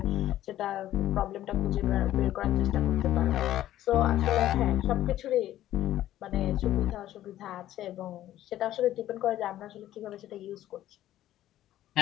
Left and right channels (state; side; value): quieter; right; 13.2 dB